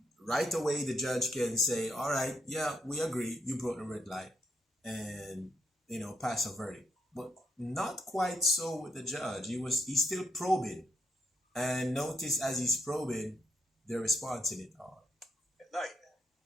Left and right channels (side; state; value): both; normal; correlation 0.78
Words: right away the judge can say, all right, yeah, we agree, you broke the red light, and pass a verdict. But not quite so with the judge. He's still probing, and notice as he's probing, they're responding it all. At night.